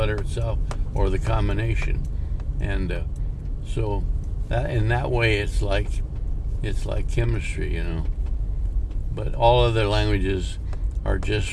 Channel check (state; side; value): identical; both; correlation 1.00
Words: itself or the combination. And so that in that way, it's like chemistry, But all other languages are